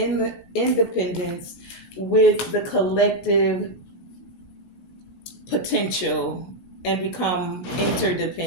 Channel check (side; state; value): right; late; 16 ms